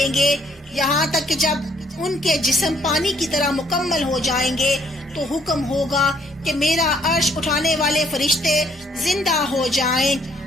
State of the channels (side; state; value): both; normal; correlation 0.65